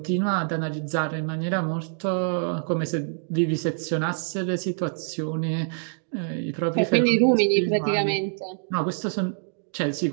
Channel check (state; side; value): silent; left; digital silence